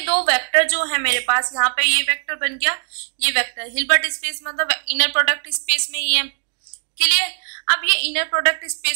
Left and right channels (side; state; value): left; silent; digital silence